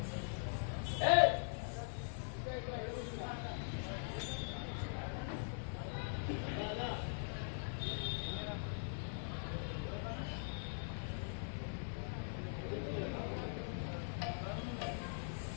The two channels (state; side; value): silent; right; digital silence